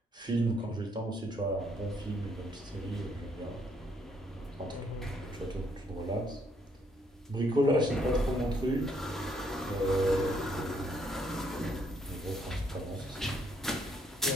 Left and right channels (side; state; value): both; normal; correlation 0.70